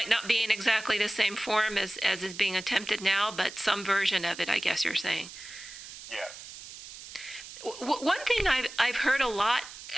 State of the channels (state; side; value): noise; right; hiss, 14 dB below the sound